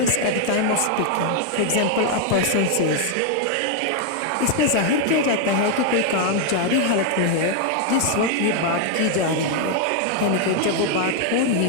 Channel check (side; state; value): both; different; correlation 0.00